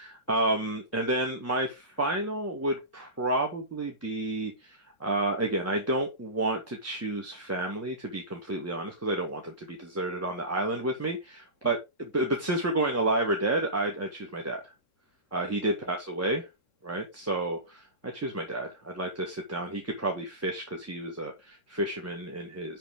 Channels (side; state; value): right; late; 3.7 ms